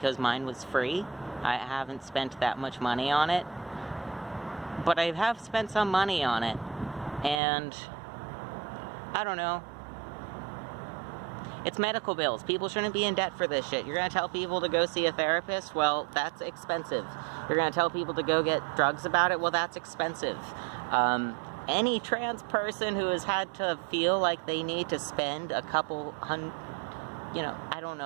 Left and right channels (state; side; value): drops out; left; at 7.4 s